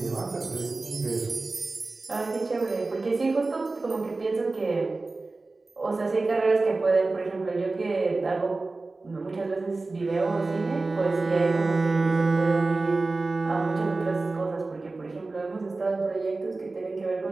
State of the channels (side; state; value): left; quieter; 3.5 dB